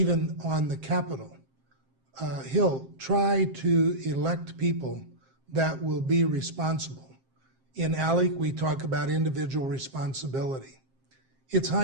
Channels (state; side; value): late; left; 7.6 ms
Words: on the Capitol Hill, try to elect people that will be responsible. In ALEC, we talk about individual responsibility. It's